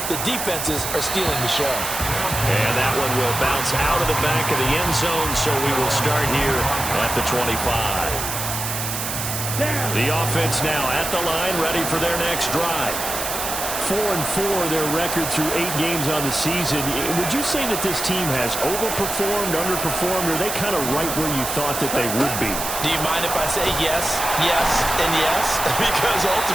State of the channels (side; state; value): right; noise; hiss, 4 dB below the sound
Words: the defenses are stealing the show. And that one will bounce out of the back of the end zone, so we will start here at the 25. The offense now at the line, ready for their next drive. 4-4, their record through 8 games on the season. Would you say that this team has overperformed, underperformed, or are they kind of right where you thought that they would be? Do you mind if I say yes, yes, and yes? Because